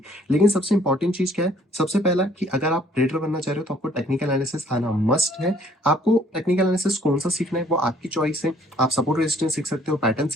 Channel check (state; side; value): normal; both; correlation 0.60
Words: लेकिन सबसे इंपॉर्टेंट चीज़ क्या है? सबसे पहला कि अगर आप ट्रेडर बनना चाह रहे हो तो आपको टेक्निकल एनालिसिस आना मस्ट है। आपको टेक्निकल एनालिसिस कौन-सा सीखना है वो आपकी चॉइस है। आप सपोर्ट रेजिस्टेंस सीख सकते हो, पैटर्न